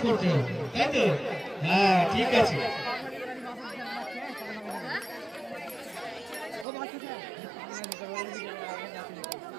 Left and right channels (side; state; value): left; drops out; at 6.7 s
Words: করতে হবে, তাই তো? হ্যাঁ ঠিক আছে।